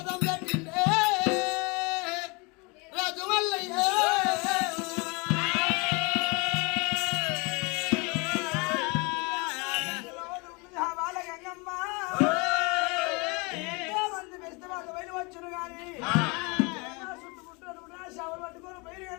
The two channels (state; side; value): quieter; right; 28.9 dB